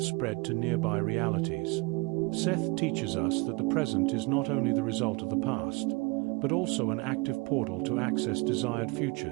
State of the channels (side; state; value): left; quieter; 27.4 dB